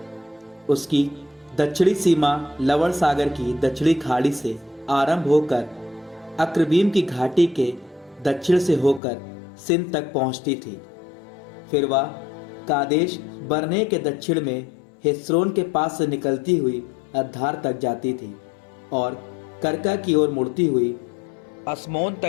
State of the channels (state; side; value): drops out; right; at 9.0 s